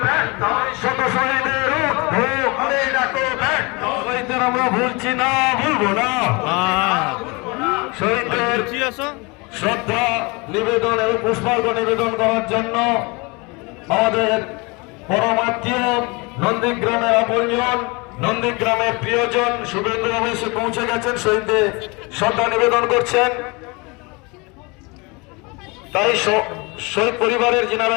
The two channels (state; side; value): quieter; right; 27.4 dB